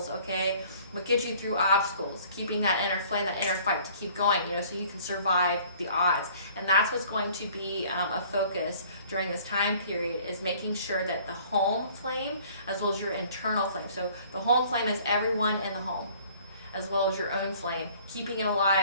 okay? What gets you through obstacles, keeping that inner flame, that inner fight to keep going, so you can survive the odds. And that's what's going to be a focus during this time period, is making sure that the home flame as well as your internal flame. So the home flame is everyone in the home, as well as your own flame, keeping it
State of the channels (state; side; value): inverted; both; correlation -0.54